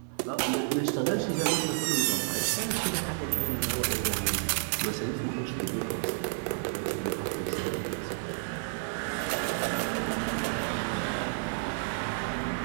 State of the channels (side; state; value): left; silent; 57 dB below the other